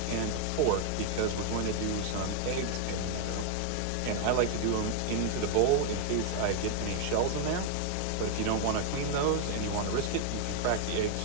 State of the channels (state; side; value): different; both; correlation 0.00